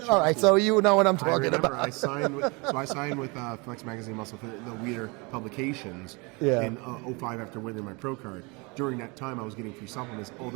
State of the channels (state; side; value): quieter; left; 28.4 dB